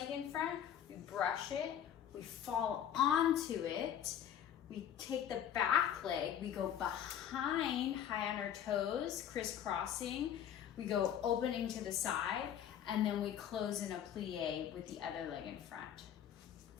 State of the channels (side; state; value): right; quieter; 9.7 dB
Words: in front, we brush it, we fall onto it, we take the back leg, we go behind, high on our toes, crisscrossing, we go opening to the side, and then we close in a plie with the other leg in front.